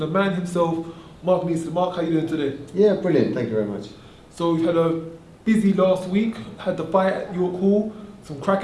man himself, Mark Neeson. Mark, how you doing today? Yeah, brilliant. Thank you very much. So we've had a busy last week. Had the fight at York Hall, some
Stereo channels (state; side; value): identical; both; correlation 1.00